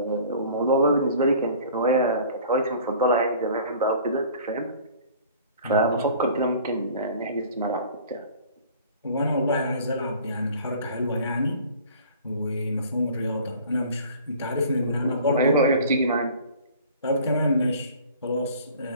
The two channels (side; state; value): both; inverted; correlation -0.48